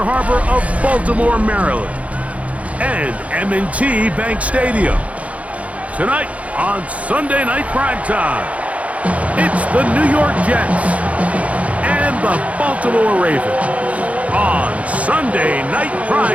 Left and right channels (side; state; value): left; late; 0.066 ms